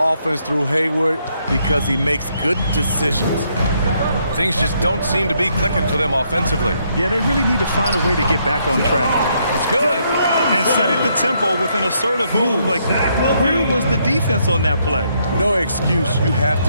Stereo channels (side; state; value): both; inverted; correlation -0.74